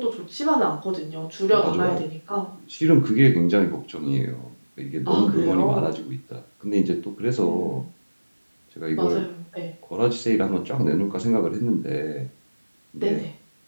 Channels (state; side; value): inverted; both; correlation -1.00